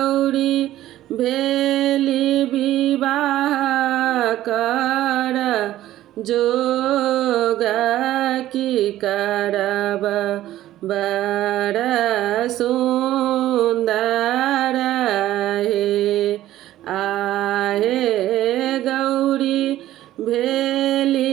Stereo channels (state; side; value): quieter; left; 14.0 dB